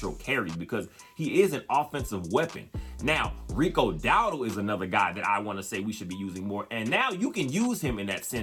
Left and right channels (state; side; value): identical; both; correlation 1.00